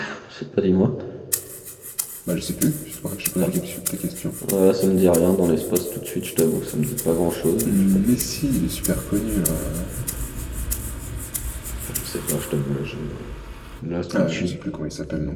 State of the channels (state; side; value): identical; both; correlation 1.00